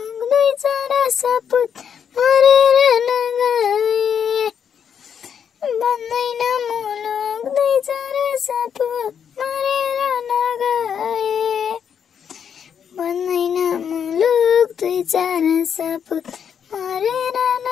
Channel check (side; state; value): right; quieter; 7.8 dB